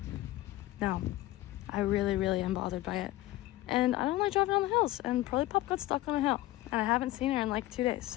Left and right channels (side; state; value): right; quieter; 16.3 dB